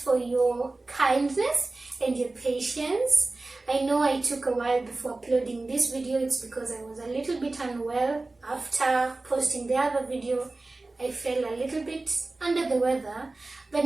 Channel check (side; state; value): left; quieter; 3.2 dB